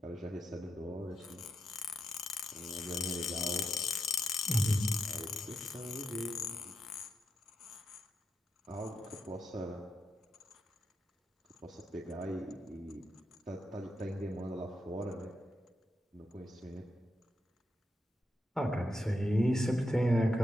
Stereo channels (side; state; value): both; normal; correlation 0.85